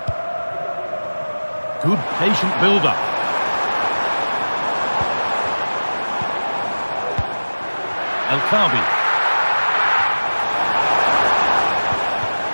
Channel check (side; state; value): both; inverted; correlation -1.00